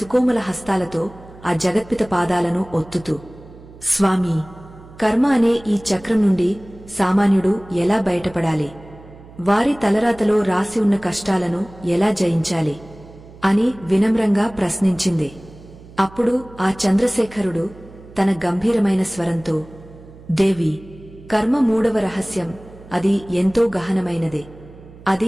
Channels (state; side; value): noise; right; hum, 20 dB below the sound